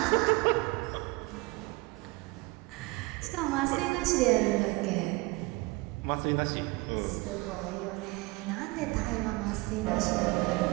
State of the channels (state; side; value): quieter; left; 24.1 dB